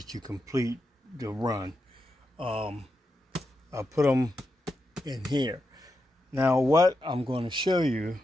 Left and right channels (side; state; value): both; normal; correlation 0.86